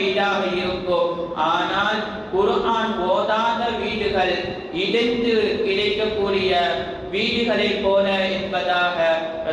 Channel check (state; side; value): identical; both; correlation 1.00